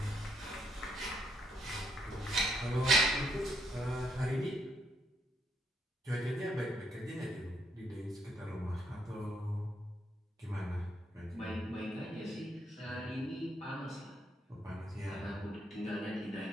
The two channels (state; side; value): normal; both; correlation 0.74